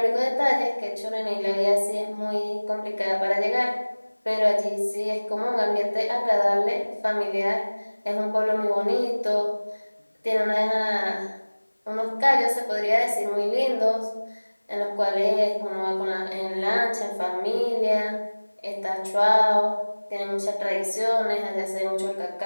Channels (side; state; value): both; inverted; correlation -1.00